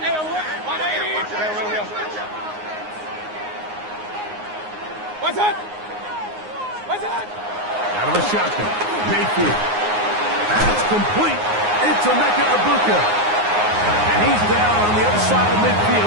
What's that? What's that? Out of the shotgun, Mayfield. That's complete. It's Emeka Egbuka. And he's down on the other side of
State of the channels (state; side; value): late; left; 9.6 ms